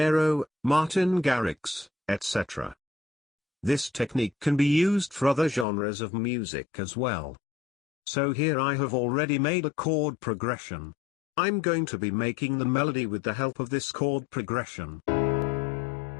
Martin Garrix, etc. This technique can be used for other genres of music as well. So here I have already made a chord progression. I'm going to be making the melody with the help of this chord progression.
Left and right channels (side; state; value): right; drops out; at 5.7 s